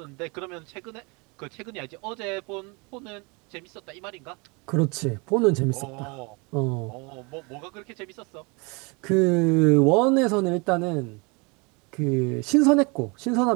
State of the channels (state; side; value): quieter; left; 29.5 dB